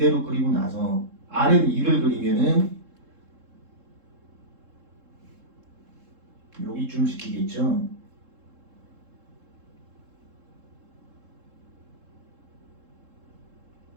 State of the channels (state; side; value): late; left; 3.7 ms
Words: 그리고 나서 R은 2를 그리면은 여기쯤 시키겠죠.